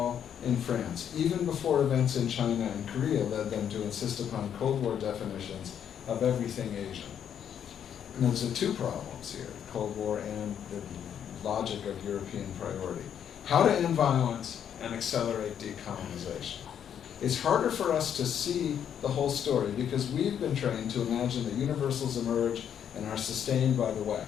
in France, even before events in China and Korea led them to insist upon Cold War definitions of everything Asian. And there's two problems here, the Cold War and the logic of European priority. How to end violence and accelerate decolonization. It's harder for us to see the whole story because we've been trained to imagine that universals emerge and are sustained by the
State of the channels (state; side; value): quieter; right; 8.9 dB